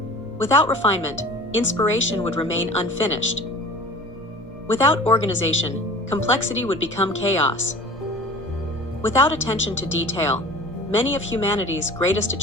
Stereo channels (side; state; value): both; normal; correlation 0.42